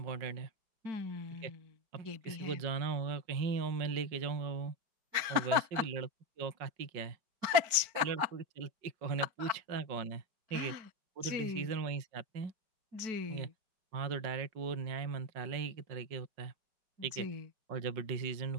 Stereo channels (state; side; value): late; left; 4.5 ms